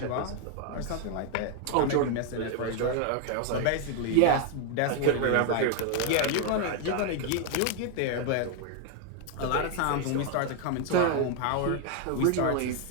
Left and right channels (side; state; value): both; different; correlation 0.00